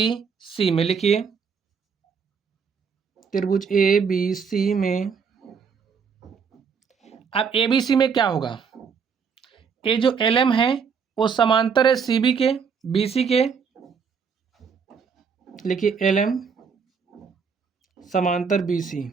में। लिखिए त्रिभुज ABC में। अब ABC में क्या होगा, ये जो LM है वो समांतर है CB के, BC के। लिखिए LM समांतर BC,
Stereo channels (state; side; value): quieter; left; 6.1 dB